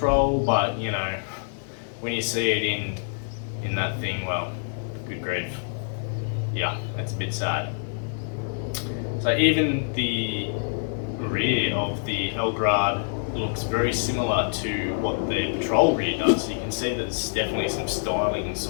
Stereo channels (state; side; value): silent; right; digital silence